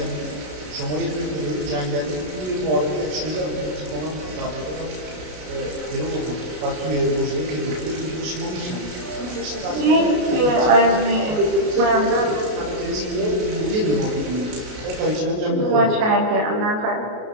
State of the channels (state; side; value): late; left; 33 ms